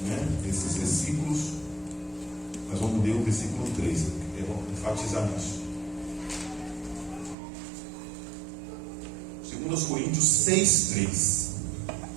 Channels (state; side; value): drops out; left; at 7.4 s